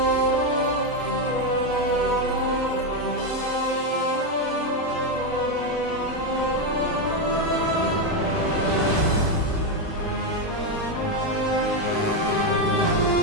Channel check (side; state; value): both; normal; correlation 0.06